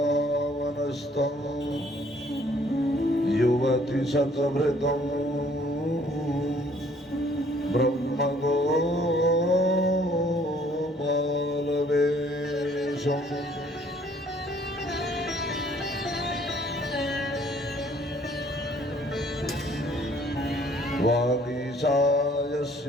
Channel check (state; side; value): normal; both; correlation 0.60